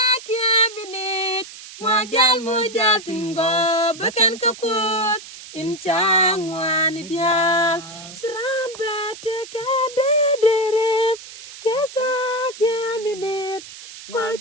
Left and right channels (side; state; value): right; noise; hiss, 15 dB below the sound